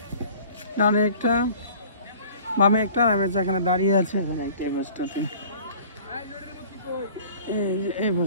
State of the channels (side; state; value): both; inverted; correlation -0.48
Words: ডানে একটা, বামে একটা, আমি যেখানে দাঁড়িয়ে আছে এখানে একটা, এই বাসটাতে, এই